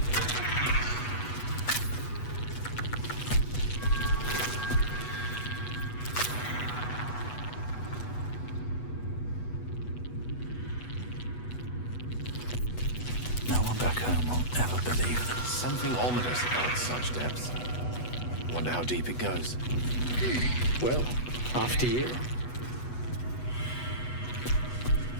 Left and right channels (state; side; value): late; right; 8.1 ms